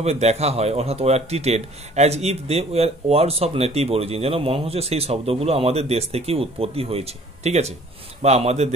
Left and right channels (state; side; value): normal; both; correlation 0.53